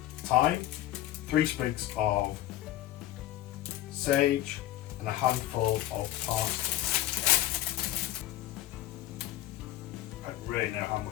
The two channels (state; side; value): quieter; right; 14.3 dB